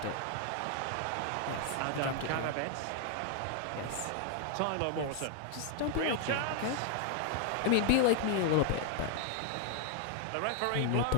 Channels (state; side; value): different; both; correlation 0.00